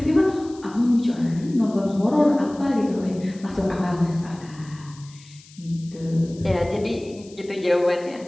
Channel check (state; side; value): noise; left; hiss, 23 dB below the sound